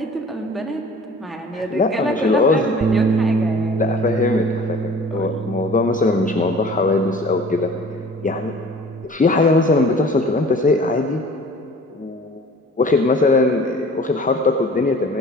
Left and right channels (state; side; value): normal; both; correlation 0.46